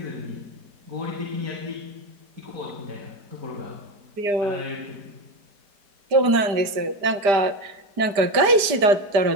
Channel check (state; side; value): late; left; 5.0 ms